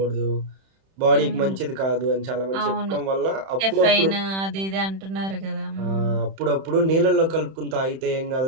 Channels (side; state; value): left; late; 31 ms